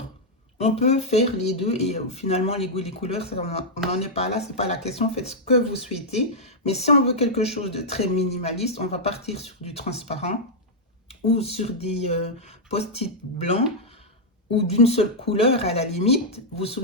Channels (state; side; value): normal; both; correlation -0.05